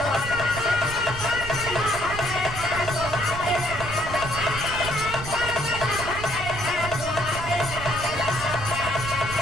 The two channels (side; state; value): right; noise; rumble, 9 dB below the sound